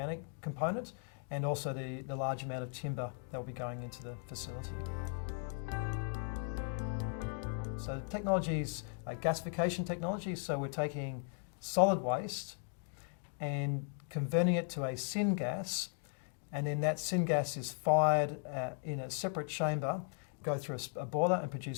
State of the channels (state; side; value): silent; right; 53 dB below the other